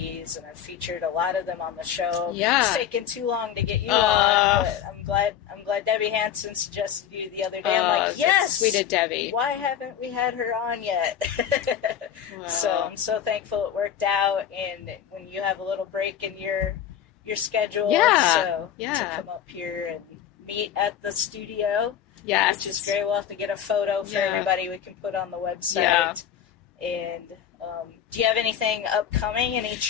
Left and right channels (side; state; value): right; quieter; 9.4 dB